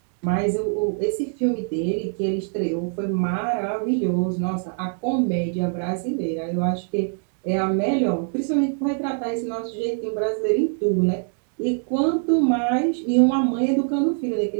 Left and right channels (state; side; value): silent; left; 61 dB below the other